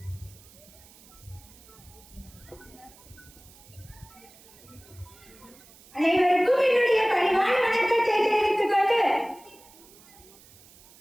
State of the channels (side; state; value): right; noise; hiss, 24 dB below the sound